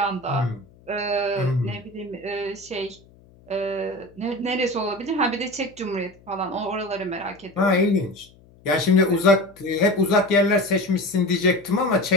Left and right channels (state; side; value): noise; left; hum, 27 dB below the sound